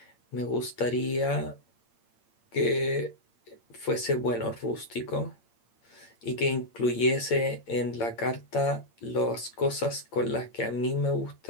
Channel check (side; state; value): right; late; 8.7 ms